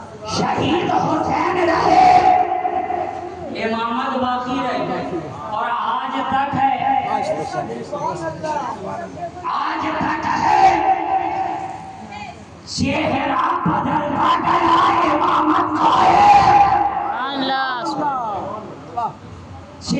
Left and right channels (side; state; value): both; identical; correlation 1.00